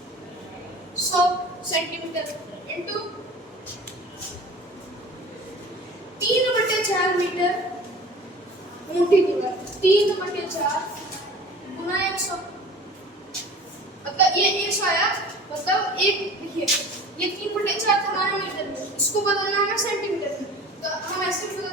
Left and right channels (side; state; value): both; normal; correlation 0.42